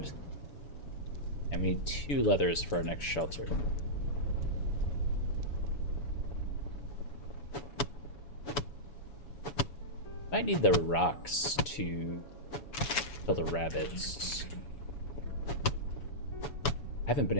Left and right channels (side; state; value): right; late; 7.0 ms